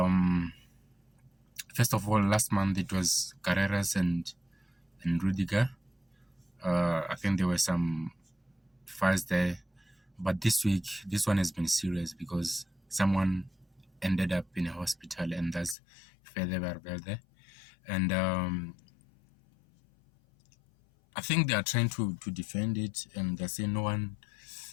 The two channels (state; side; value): drops out; right; at 15.8 s